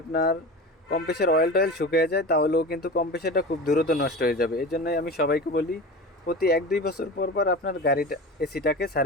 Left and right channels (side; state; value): both; normal; correlation 0.31